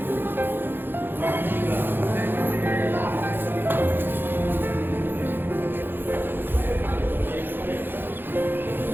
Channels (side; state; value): left; late; 0.099 ms